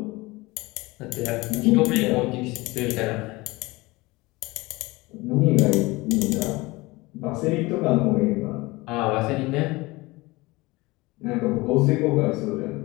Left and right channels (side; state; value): right; quieter; 22.1 dB